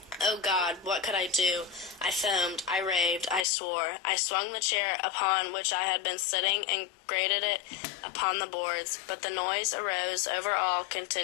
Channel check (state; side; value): drops out; right; at 3.5 s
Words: Oh God, what could I do? I foamed, I raved, I swore. I swung the chair upon which I had been sitting and grated it upon the boards, but the noise arose over all,